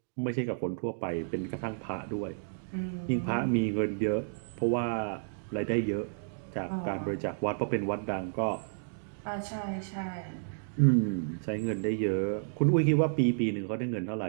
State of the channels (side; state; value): left; silent; digital silence